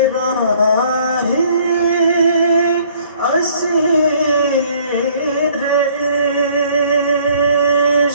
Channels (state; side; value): inverted; both; correlation -0.59